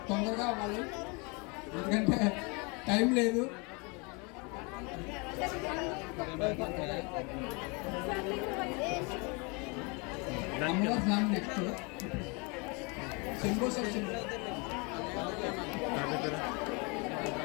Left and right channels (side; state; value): right; quieter; 30.4 dB